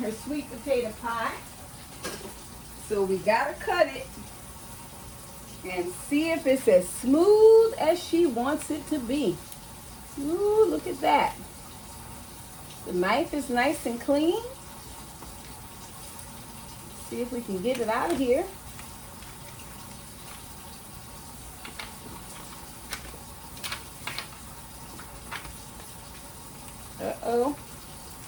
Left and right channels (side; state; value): both; identical; correlation 1.00